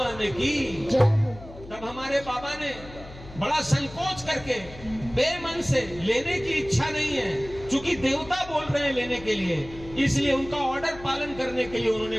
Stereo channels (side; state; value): left; noise; hum, 16 dB below the sound